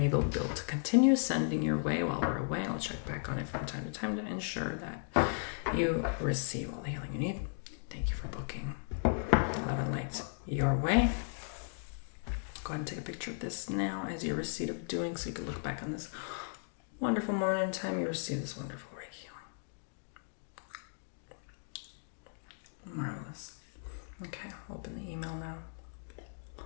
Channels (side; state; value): right; silent; digital silence